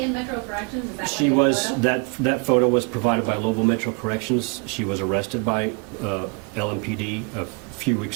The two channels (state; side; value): quieter; left; 33.4 dB